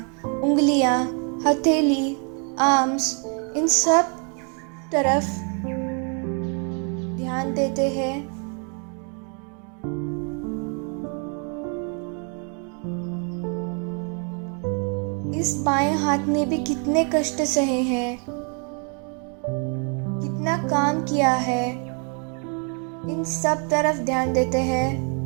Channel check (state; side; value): quieter; left; 39.3 dB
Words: उंगलियां, हथेली, आर्म्स, इन सब तरफ ध्यान देते हैं। इस बाएं हाथ ने भी कितने कष्ट सहे हैं। कितना काम किया है, इन सब तरफ ध्यान देते हैं।